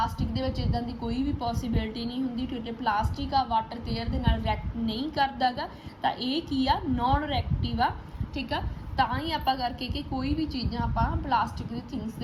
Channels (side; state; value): both; identical; correlation 1.00